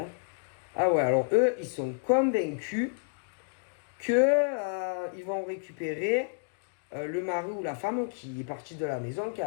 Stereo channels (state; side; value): silent; right; digital silence